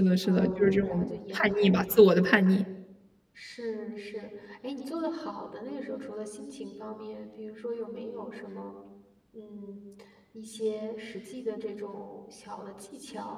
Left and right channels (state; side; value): identical; both; correlation 1.00